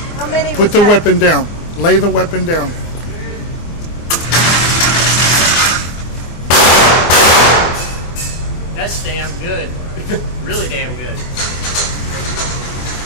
How many? Put the weapon down. Lay the weapon down. That's damn good. Really damn good.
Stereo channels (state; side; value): late; right; 24 ms